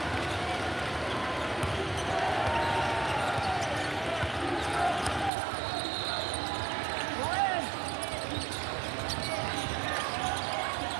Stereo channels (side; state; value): left; drops out; at 5.3 s